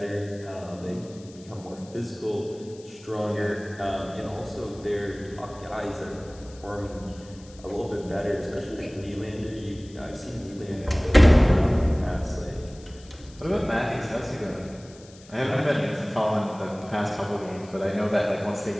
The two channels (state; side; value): noise; left; hiss, 23 dB below the sound